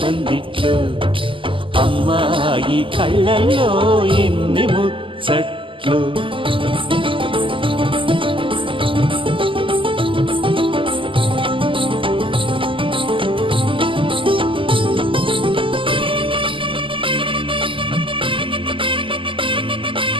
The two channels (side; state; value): left; late; 0.25 ms